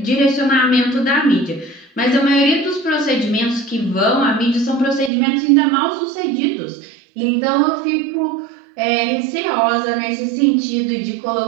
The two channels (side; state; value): left; drops out; at 5.1 s